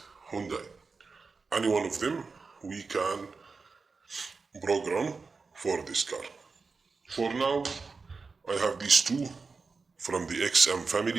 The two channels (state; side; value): quieter; left; 4.5 dB